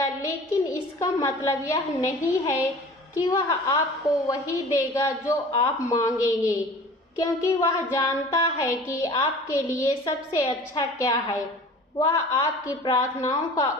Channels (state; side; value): normal; both; correlation 0.43